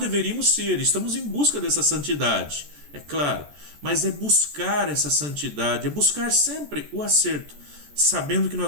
ser, estamos em busca dessa santidade, é claro, mas é buscar essa santidade, é buscar sempre o acerto, sabendo que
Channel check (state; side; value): late; left; 14 ms